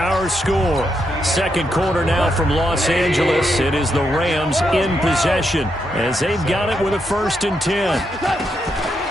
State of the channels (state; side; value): normal; both; correlation 0.81